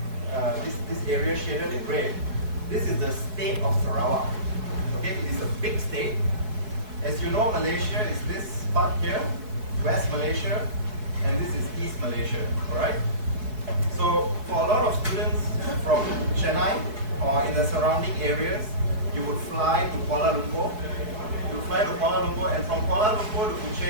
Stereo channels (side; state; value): left; late; 4.6 ms